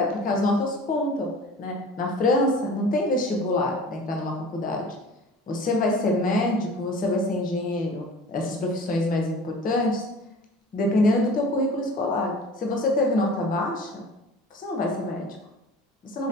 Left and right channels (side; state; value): both; normal; correlation 0.42